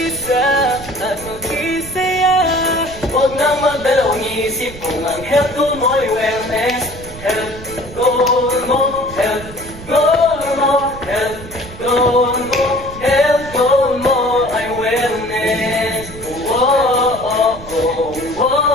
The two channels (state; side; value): noise; right; rumble, 15 dB below the sound